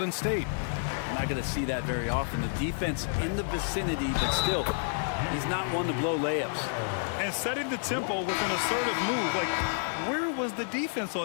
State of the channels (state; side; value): silent; right; digital silence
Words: State. I'm not going to see that very often. The defense in the vicinity, but still, he's not one to blow layups. And setting the tempo with an assertive move. Like, where was the defense